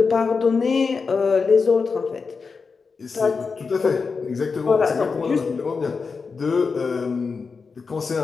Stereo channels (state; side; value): quieter; right; 4.9 dB